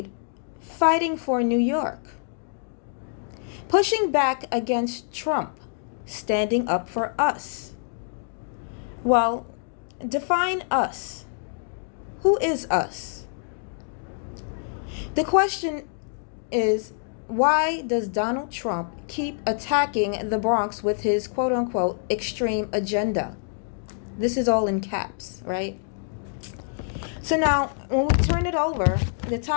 fighting for New York, pushing back against Trump, standing up for us. Well, define us. Who is us? The question is, why does Donald Trump keep attacking the Bronx with his quote-unquote extreme agenda? This is all in caps, right? So now, when we turn it over, the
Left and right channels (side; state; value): right; silent; digital silence